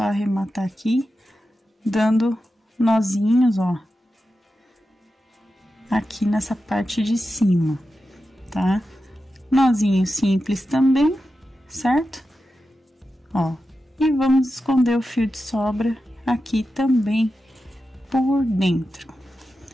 arrematar aqui, dando nozinhos, ó. Aqui nessa parte de cima, tá? Nozinho simples também, certo? Ó, e vamos esconder o fio de sobra aqui também por dentro.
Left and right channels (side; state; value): both; normal; correlation 0.91